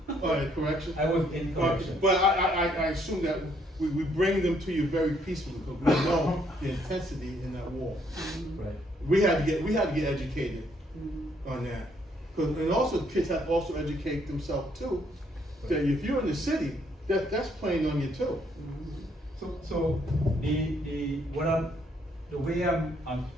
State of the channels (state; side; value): normal; both; correlation 0.69